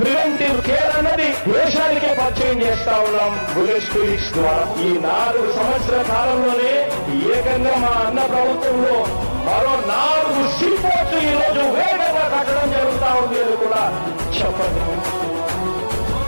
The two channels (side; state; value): both; inverted; correlation -1.00